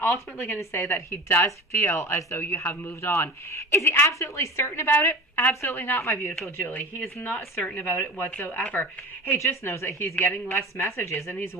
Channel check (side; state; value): both; normal; correlation 0.34